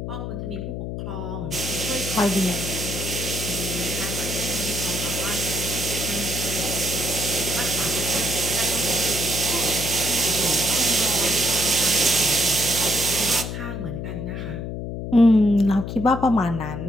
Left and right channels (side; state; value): left; noise; hum, 5 dB below the sound